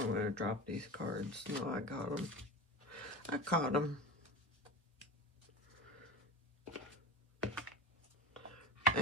going to drop these cards. No, I got them. I caught them.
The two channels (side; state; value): both; normal; correlation 0.28